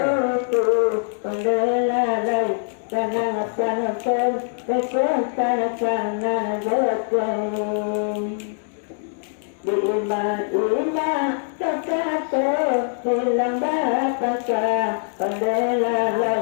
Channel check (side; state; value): right; silent; digital silence